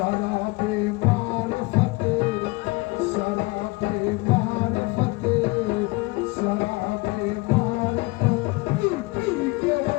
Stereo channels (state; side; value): quieter; right; 24.1 dB